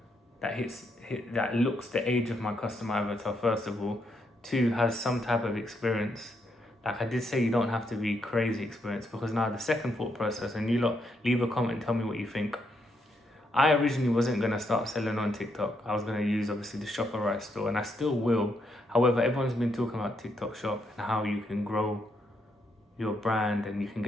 that looks the age of my customer avatar, first of all. 2, has some type of experience. Like I did say, you don't have to be crazy experienced, because now the second thought process, and you lot leave a comment and tell me what you think. I originally wasn't going to start selling on TikTok. I was going to use obviously the ShopRite store, and I still will. However, everyone's been talking about TikTok Shop and how you can grow your brand and you can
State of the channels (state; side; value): normal; both; correlation 0.78